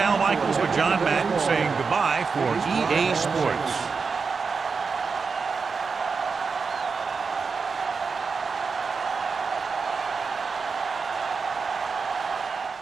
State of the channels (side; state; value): left; quieter; 5.0 dB